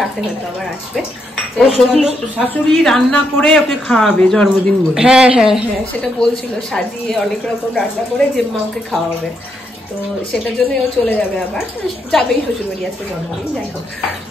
রাতে হয়তো আবার আসবে। শাশুড়ি রান্না করে ওকে খাওয়াবে জন্মদিন বলে। হ্যাঁ হ্যাঁ হ্যাঁ, সেটা বলছিল, সাজিয়ে অনেক রকম রান্না করে যে মা ওকে খাওয়াবে। তো সেটার জন্যই ও চলে যাবে, আবার যাবেই শ্বশুর বাড়ি আজকে জন্মদিন। যাই হোক,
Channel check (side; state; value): both; normal; correlation 0.78